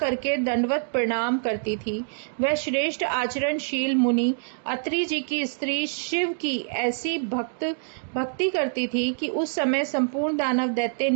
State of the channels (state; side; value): silent; left; digital silence